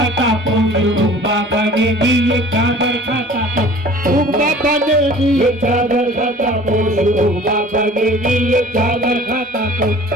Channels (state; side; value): normal; both; correlation 0.46